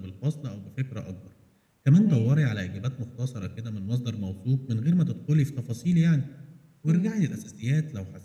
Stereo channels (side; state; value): both; identical; correlation 1.00